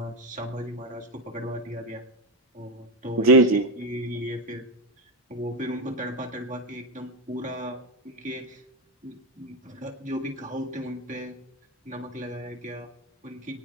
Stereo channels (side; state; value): both; normal; correlation 0.13